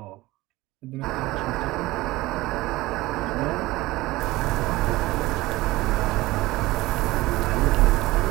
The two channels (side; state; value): left; quieter; 19.0 dB